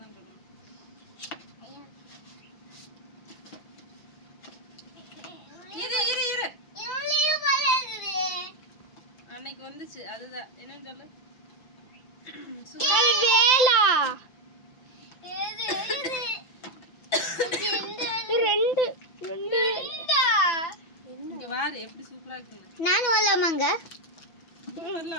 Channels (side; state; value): right; late; 5.9 ms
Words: சொல்லுங்க. இரு அன்னைக்கு வந்துச்சு அதுதான். என்னன்னு சொல்லு. வேலா ரெண்டு இங்க வாரு எப்படி சூப்பரா இருக்குங்க. நான் வரலாமாங்க?